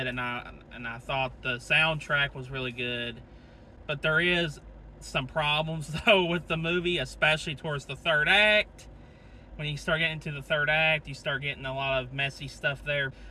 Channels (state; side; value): identical; both; correlation 1.00